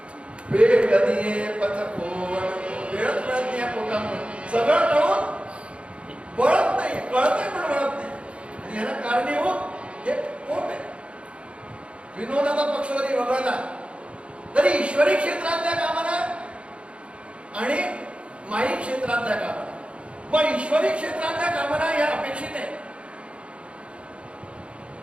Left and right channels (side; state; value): left; late; 0.059 ms